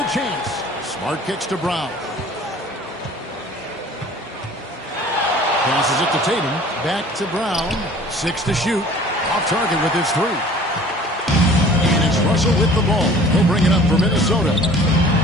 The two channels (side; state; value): both; normal; correlation 0.48